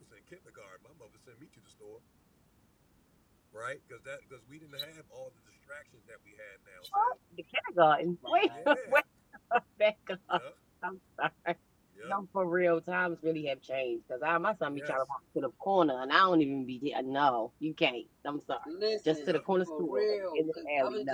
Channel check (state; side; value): identical; both; correlation 1.00